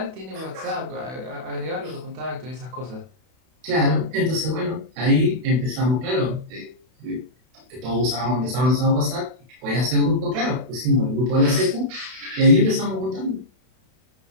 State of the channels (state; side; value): late; left; 32 ms